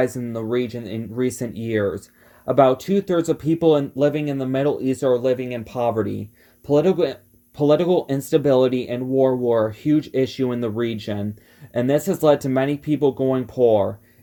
in the region in recent years. About 2/3 of people living in the Middle East are living in poverty. Political instability and war were a huge issue in the region, and this has led to many people going poor.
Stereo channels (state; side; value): identical; both; correlation 1.00